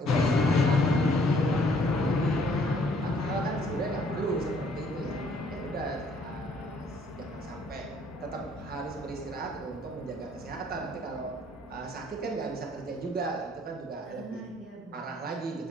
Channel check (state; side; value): normal; both; correlation 0.62